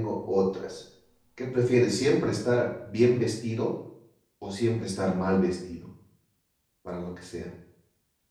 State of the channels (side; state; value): both; identical; correlation 1.00